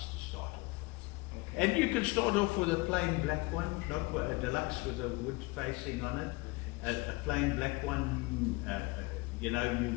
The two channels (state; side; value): quieter; right; 24.3 dB